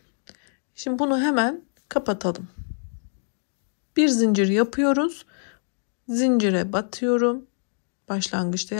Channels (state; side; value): silent; right; digital silence